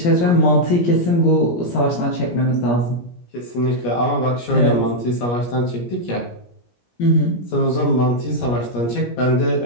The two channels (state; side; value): late; right; 17 ms